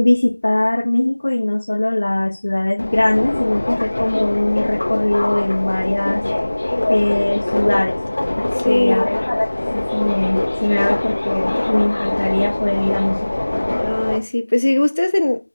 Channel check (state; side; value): inverted; both; correlation -1.00